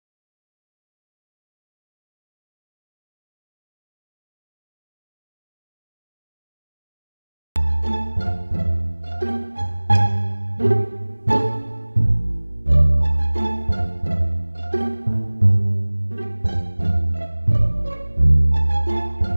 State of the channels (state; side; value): inverted; both; correlation -1.00